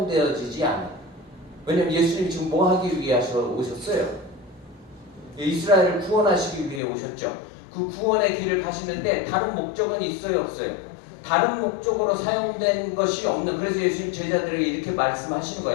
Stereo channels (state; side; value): drops out; right; at 6.8 s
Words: 않아요. 왜냐면 예수님이 지금 뭐 하기 위해 오셨어요? 이스라엘을 구원하시기 위해 오셨죠. 그 구원의 길을 가시는데 다른 목적은 있어요, 없어요? 다른 목적으로 사용된 것이 없는, 그래서 예수님 제자들에게 이렇게 말씀하시는